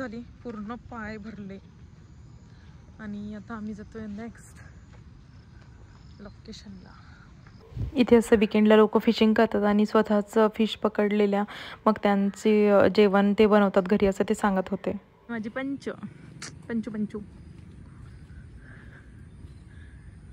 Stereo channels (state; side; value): identical; both; correlation 1.00